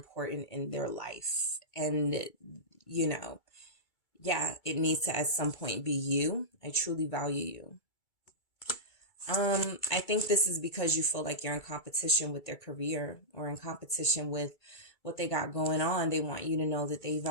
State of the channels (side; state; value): right; late; 2.3 ms